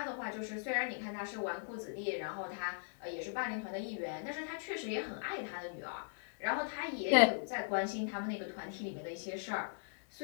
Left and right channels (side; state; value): right; silent; digital silence